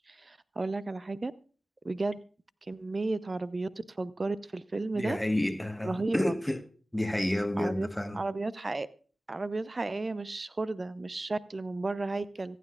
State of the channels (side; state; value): both; normal; correlation 0.97